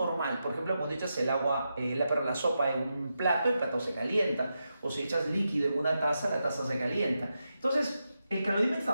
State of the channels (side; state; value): both; inverted; correlation -0.87